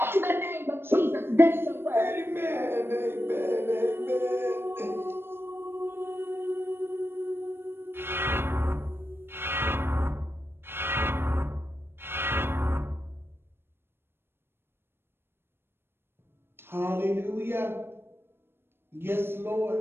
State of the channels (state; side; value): late; left; 0.11 ms